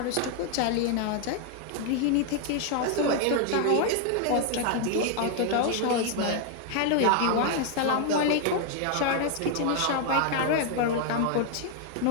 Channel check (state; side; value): different; both; correlation 0.00